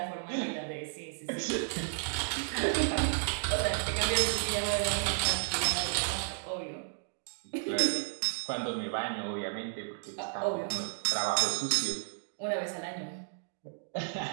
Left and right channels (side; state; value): left; silent; digital silence